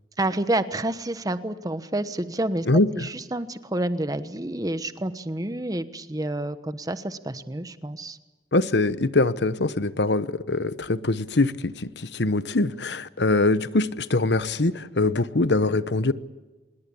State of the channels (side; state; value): both; normal; correlation 0.38